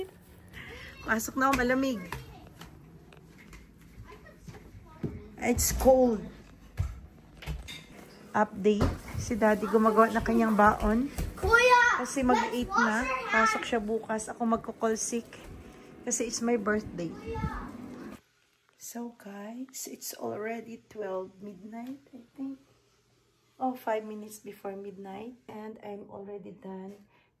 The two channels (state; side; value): identical; both; correlation 1.00